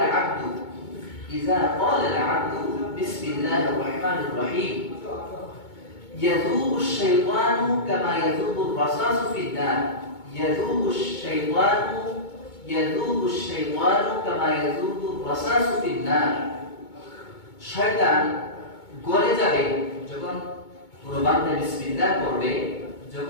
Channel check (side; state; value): right; late; 2.2 ms